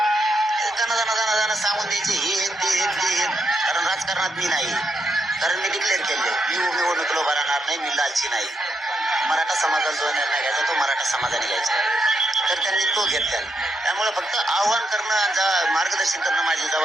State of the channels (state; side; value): normal; both; correlation 0.81